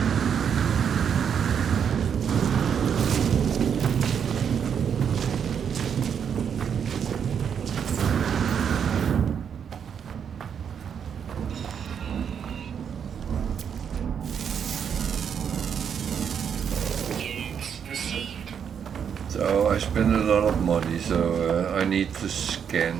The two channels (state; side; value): quieter; left; 7.7 dB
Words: I spend a lot of money, so I need to scan